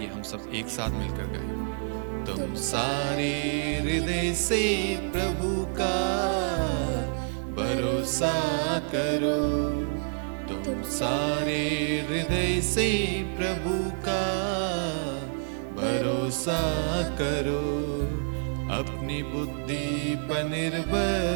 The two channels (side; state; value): left; silent; digital silence